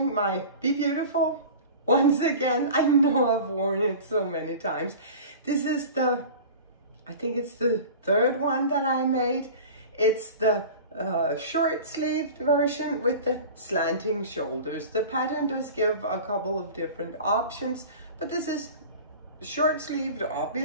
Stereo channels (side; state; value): both; inverted; correlation -0.37